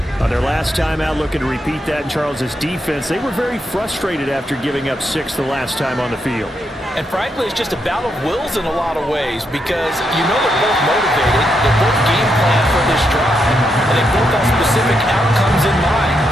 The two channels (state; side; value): normal; both; correlation 0.81